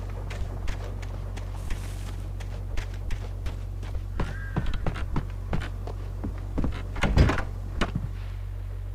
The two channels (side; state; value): both; identical; correlation 1.00